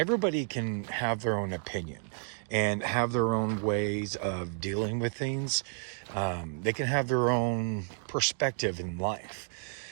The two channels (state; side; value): silent; left; 55 dB below the other